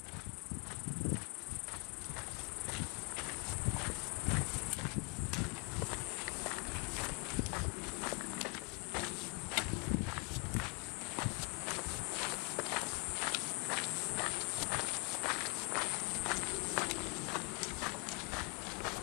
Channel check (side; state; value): right; quieter; 33.3 dB